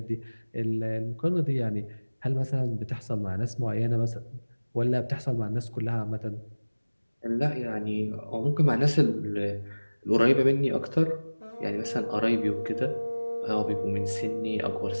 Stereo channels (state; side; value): inverted; both; correlation -1.00